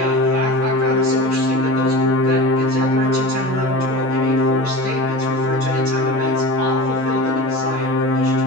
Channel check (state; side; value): normal; both; correlation 0.32